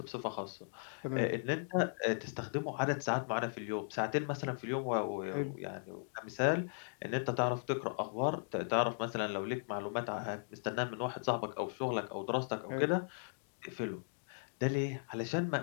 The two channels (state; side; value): silent; right; digital silence